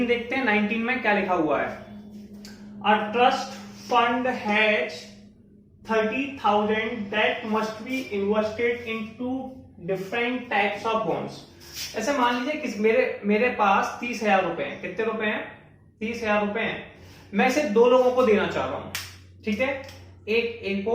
देखते हैं। 19 में क्या लिखा हुआ है, a trust fund has 30,000 that must be invested into different types of bonds. ऐसे मान लीजिए कि मेरे पास 30,000 रुपए हैं। कितने रुपए हैं, 30,000 रुपए हैं। मैं इसे 2 लोगों को देना चाह रहा हूं, ठीक है। एक ए को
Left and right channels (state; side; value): identical; both; correlation 1.00